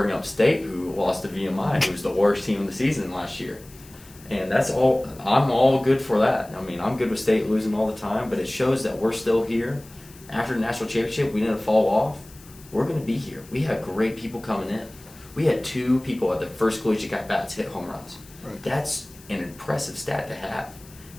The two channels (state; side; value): noise; left; hiss, 22 dB below the sound